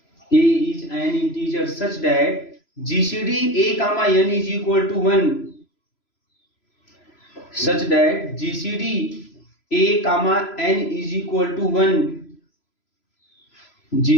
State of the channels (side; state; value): right; late; 3.0 ms